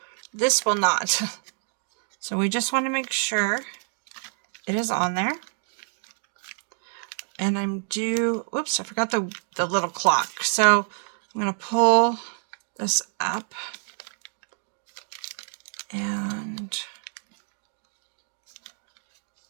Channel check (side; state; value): left; silent; 60 dB below the other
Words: This will not. So we just want to make sure it is on there. And whoops, I forgot the little clock. So I'm going to pull this up and